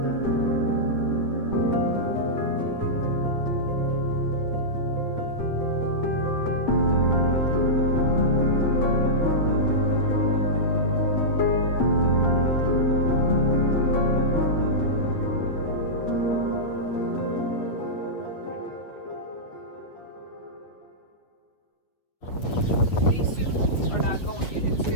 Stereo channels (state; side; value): late; right; 8.3 ms